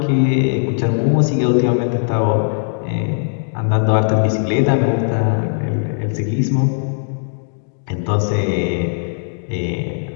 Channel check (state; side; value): silent; right; digital silence